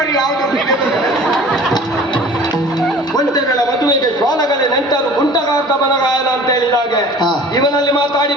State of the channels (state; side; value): normal; both; correlation 0.44